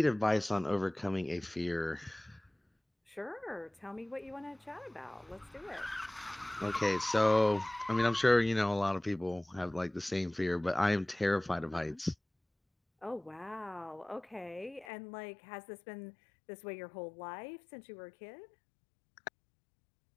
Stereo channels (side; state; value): right; drops out; at 14.9 s